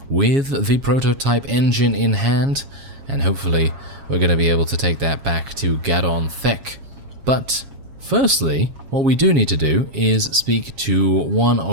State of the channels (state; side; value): late; left; 7.3 ms